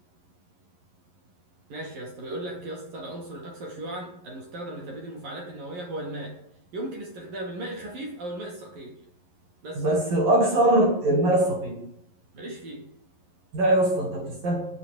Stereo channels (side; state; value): left; late; 11 ms